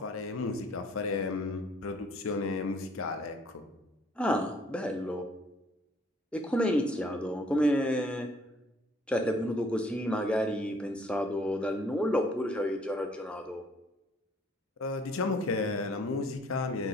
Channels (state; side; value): normal; both; correlation 0.60